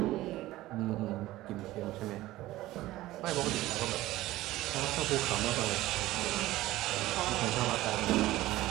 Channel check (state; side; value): quieter; left; 16.6 dB